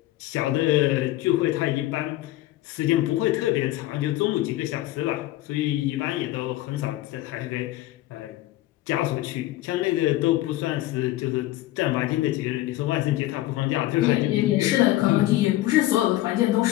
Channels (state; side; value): quieter; right; 16.0 dB